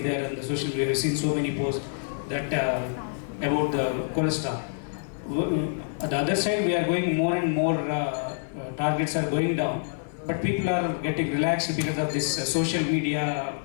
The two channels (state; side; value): silent; right; 56 dB below the other